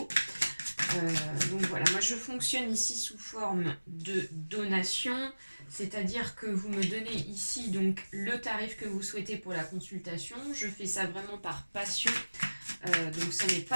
Donc voilà, moi je fonctionne ici sous forme de donation, c'est-à-dire que vous me donnez ici donc le tarif que vous souhaitez pour la consultation. Je fais ça vraiment par passion, donc ce n'est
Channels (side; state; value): both; inverted; correlation -1.00